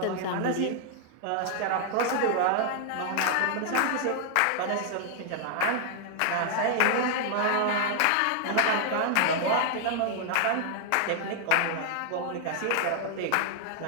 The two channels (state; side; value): different; both; correlation 0.00